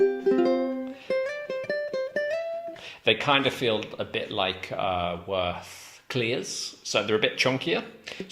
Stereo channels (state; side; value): identical; both; correlation 1.00